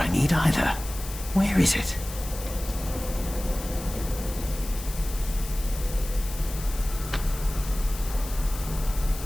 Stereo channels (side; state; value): left; noise; hiss, 12 dB below the sound